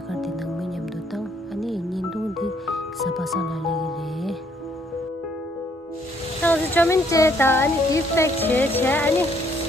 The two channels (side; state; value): both; normal; correlation 0.67